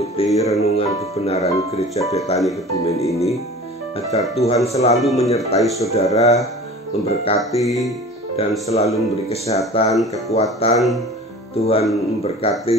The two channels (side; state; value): both; normal; correlation 0.41